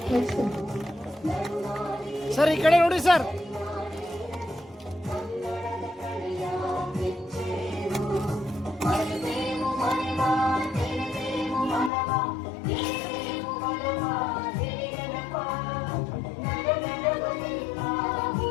ಸರ್ ಈ ಕಡೆ ನೋಡಿ ಸರ್.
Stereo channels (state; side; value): drops out; right; at 11.9 s